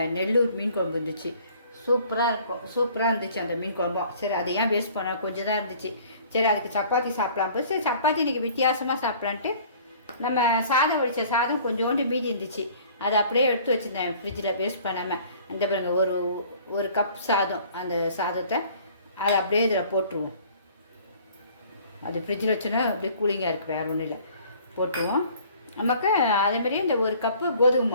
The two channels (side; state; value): both; inverted; correlation -0.53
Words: நெல்லூர் மீன் குழம்பு இருந்துச்சு. சூப்பராக இருந்துச்சு அந்த மீன் குழம்பும். சரி, அதை ஏன் வேஸ்ட் பண்ண, கொஞ்சம் தான் இருந்துச்சு. சரி, அதுக்கு சப்பாத்தி சாப்பிடலாம் போது சரி சப்பாத்தி இன்றைக்கி வித்தியாசமாக சாப்பிட்லான்ட்டு நம்ம சாதம் வடித்த சாதம் கொஞ்சோண்டு மீதி இருந்துச்சு. அதை அப்படியே எடுத்து வச்சுருந்தேன் ஃப்ரிட்ஜில் வேஸ்ட் பண்ணாமல். அந்த பாருங்க, ஒரு கப் சாதம், அந்த சாதத்தை அதை அப்படியே இதில் போட்டுருவோம். அது ஃப்ரிட்ஜில் வச்சோன்னா அப்படியே கூலிங்காக இருக்குது, வேறு ஒன்றும் இல்லை. போட்டுருவோம். நமக்கு அதேமாதிரியே இந்த ஒரு கப்பு கோதுமை